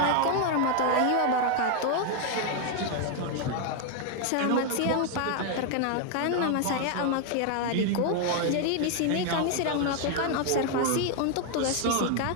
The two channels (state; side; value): different; both; correlation 0.00